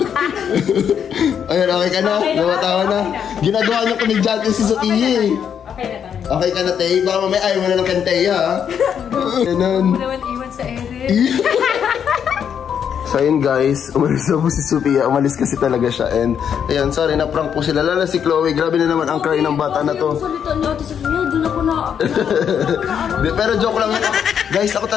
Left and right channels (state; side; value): quieter; right; 8.1 dB